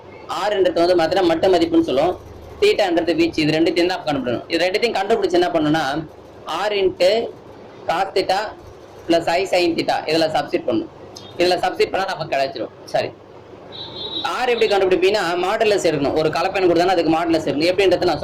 ஆறுன்றது வந்து பார்த்தீங்கன்னா மட்டு மதிப்புன்னு சொல்லுவோம், தீட்டான்றது வீச்சு. இது ரெண்டுத்தையும் தான் கண்டுபிடிக்கணும். இது ரெண்டுத்தையும் கண்டுபிடிச்சு என்ன பண்ணணும்னா r × cos θ + i sin θ இதில் சப்ஸ்டிட் பண்ணணும். இதில் சப்ஸ்டிட் பண்ணால் நமக்கு கிடைச்சிடும். சரி, ஆர் எப்படி கண்டுபிடிப்பீங்கன்னா மாடுலஸ் எடுக்கணும். ஒரு கலப்பெண் கொடுத்தா அதுக்கு மாடுலஸ் எடுக்கணும். எப்படின்றது நான்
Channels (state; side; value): identical; both; correlation 1.00